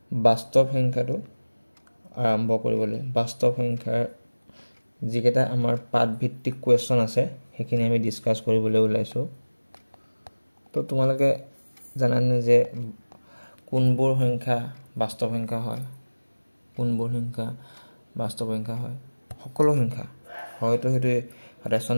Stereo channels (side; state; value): both; inverted; correlation -1.00